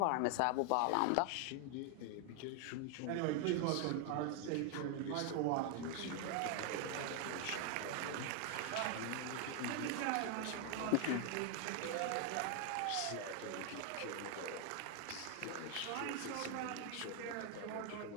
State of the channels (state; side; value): different; both; correlation 0.00